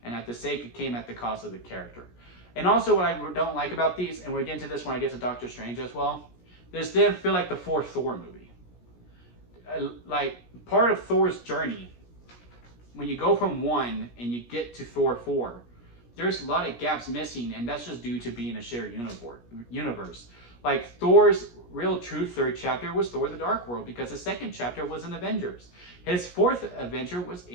and at the sake, it came at the cost of the character. And also, what I don't like about these, and we'll get into this when I get to Doctor Strange as well, this didn't feel like the fourth Thor movie. Like, part of Thor's journey, when you go from 1 and you get to Thor 4, there's a lot of gaps missing, and that's just due to being a shared universe. Like, Thor's real true third chapter was Thor: The Dark World, because his second chapter was in Avengers. His fourth adventure was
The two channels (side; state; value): right; late; 17 ms